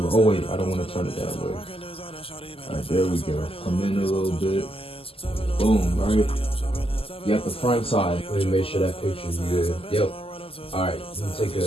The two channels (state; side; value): late; right; 0.27 ms